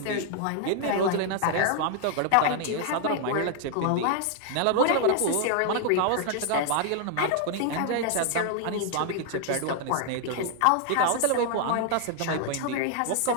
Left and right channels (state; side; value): different; both; correlation 0.00